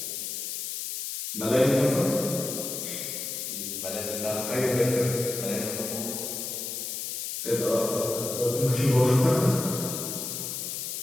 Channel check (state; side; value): noise; left; hiss, 5 dB below the sound